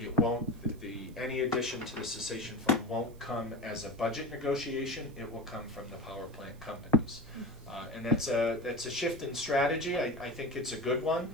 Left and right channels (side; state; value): right; noise; hiss, 27 dB below the sound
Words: won't, any addition to the cessation fund won't come as a budget negotiation. It will come from the power plant companies. And that's a shift in strategy. I think it's a good one,